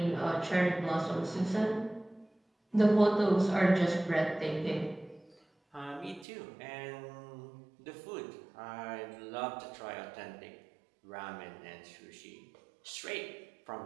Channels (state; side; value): drops out; left; at 6.2 s